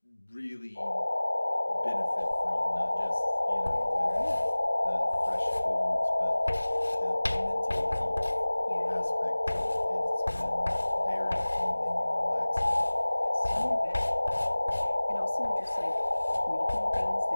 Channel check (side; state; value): both; inverted; correlation -1.00